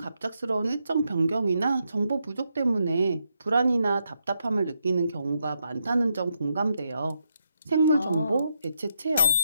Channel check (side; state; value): both; inverted; correlation -0.81